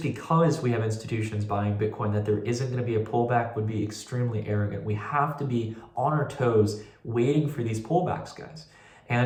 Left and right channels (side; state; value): both; identical; correlation 1.00